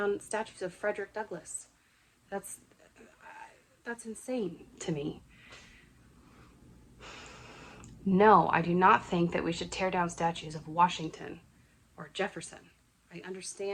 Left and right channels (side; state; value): both; identical; correlation 1.00